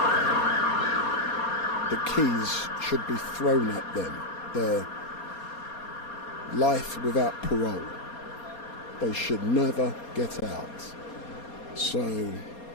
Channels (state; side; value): late; right; 4.2 ms